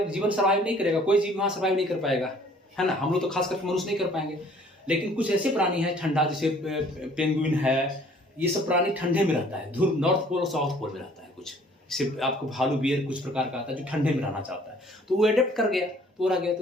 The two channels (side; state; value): both; normal; correlation 0.56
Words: जीवन सर्वाइव नहीं करेगा, कोई जीव वहाँ सर्वाइव नहीं कर पाएगा, है ना। हम लोग तो खास करके मनुष्य नहीं कर पाएंगे, लेकिन कुछ ऐसे प्राणी हैं ठंडा, जैसे पेंगुइन है, ये सब प्राणी ठंडे में रहता है, ध्रुव नॉर्थ पोल और साउथ पोल में रहता है। कुछ जैसे आपको भालू बियर कुछ प्रकार का आता है जो ठंडे में रहना चाहता है, तो वो एडेप्ट कर गया तो रह गया।